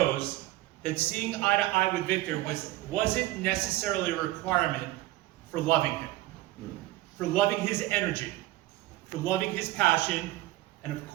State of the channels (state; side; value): quieter; left; 17.1 dB